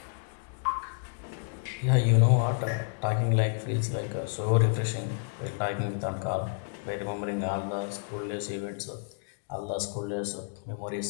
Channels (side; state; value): right; silent; 58 dB below the other